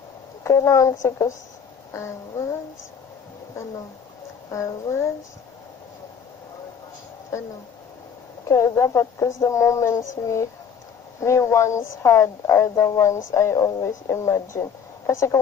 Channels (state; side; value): quieter; right; 7.1 dB